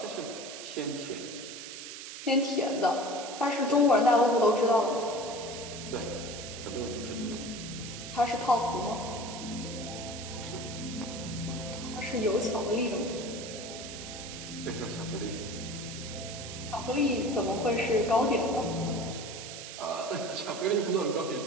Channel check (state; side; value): noise; right; hiss, 10 dB below the sound